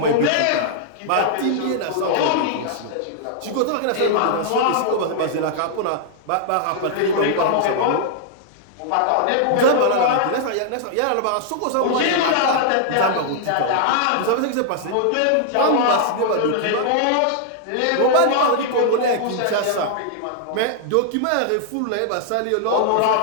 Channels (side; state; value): both; different; correlation -0.01